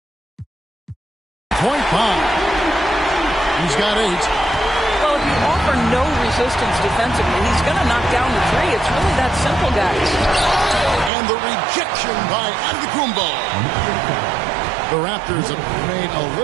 Point bomb. He's got 8. Well, if you offer no resistance defensively, he's going to knock down the 3. It's really that simple, guys. And the rejection by Antetokounmpo. The Raptors have made a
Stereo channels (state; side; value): drops out; left; at 11.1 s